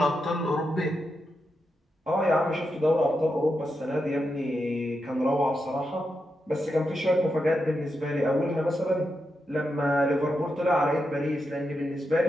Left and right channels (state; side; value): normal; both; correlation 0.86